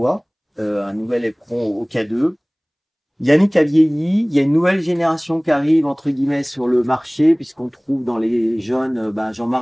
un nouvel éperon au K2. Yannick a vieilli, il y a une nouvelle génération qui arrive, entre guillemets, sur le marché, puisqu'on trouve dans les jeunes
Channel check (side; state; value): both; identical; correlation 1.00